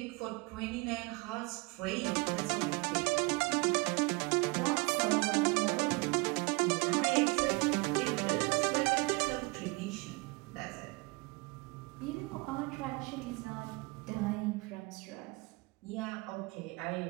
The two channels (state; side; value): quieter; left; 26.0 dB